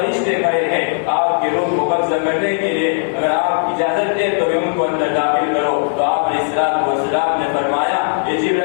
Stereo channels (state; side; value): silent; right; digital silence